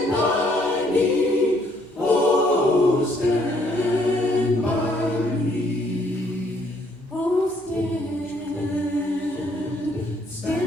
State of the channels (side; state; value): both; normal; correlation 0.67